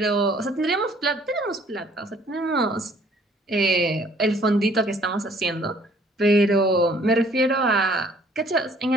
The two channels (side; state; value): both; normal; correlation 0.59